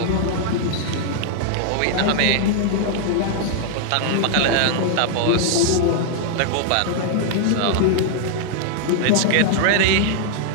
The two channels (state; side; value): different; both; correlation 0.00